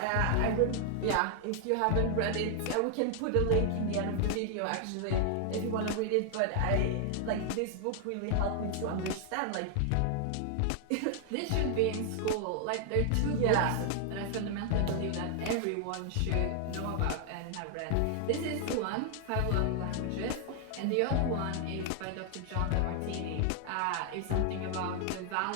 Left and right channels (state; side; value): different; both; correlation 0.00